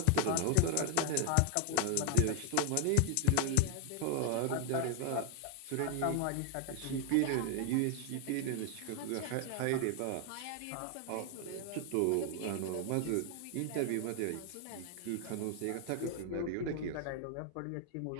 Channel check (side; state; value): both; different; correlation 0.00